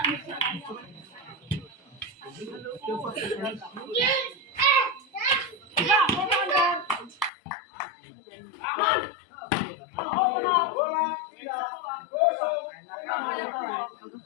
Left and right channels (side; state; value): right; drops out; at 7.3 s